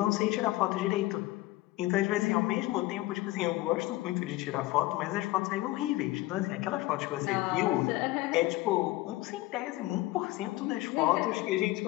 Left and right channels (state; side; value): quieter; right; 18.5 dB